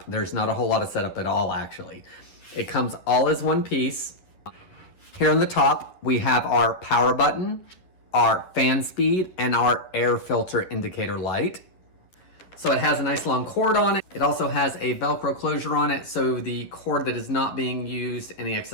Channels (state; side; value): late; right; 11 ms